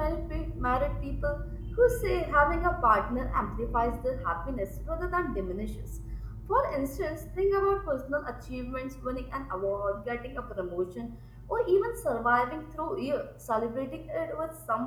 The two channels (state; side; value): identical; both; correlation 1.00